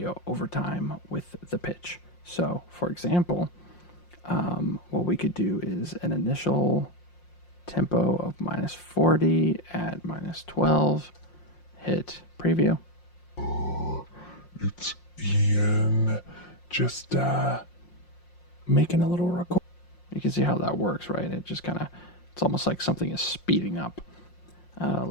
over time with the pitch. So, for example, what we could do is an initial tempo of -40 at -12. Hit preview. It's Ian. Just Making a little record. You can see how that works, right? It just kind of, it's almost like something is speeding up.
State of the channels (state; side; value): late; right; 5.6 ms